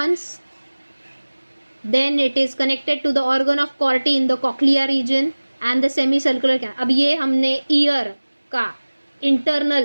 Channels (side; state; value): both; inverted; correlation -1.00